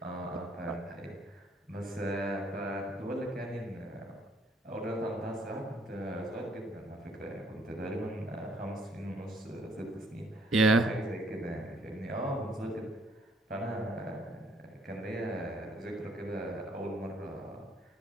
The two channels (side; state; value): both; normal; correlation 0.64